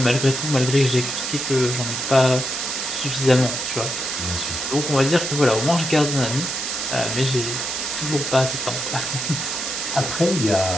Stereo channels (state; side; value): noise; right; hiss, 3 dB below the sound